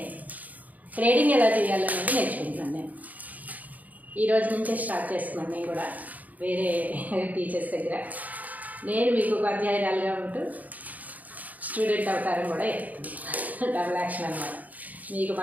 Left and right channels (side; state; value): left; late; 0.078 ms